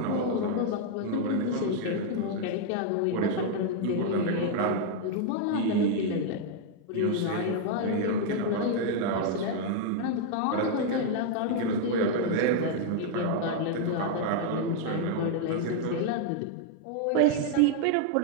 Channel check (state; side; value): different; both; correlation 0.00